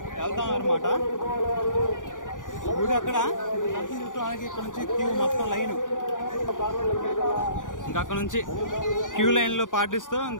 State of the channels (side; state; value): right; late; 0.88 ms